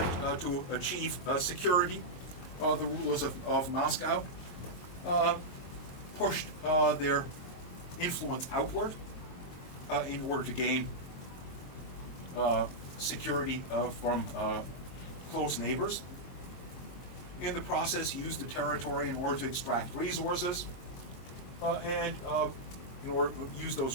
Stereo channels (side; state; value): right; late; 22 ms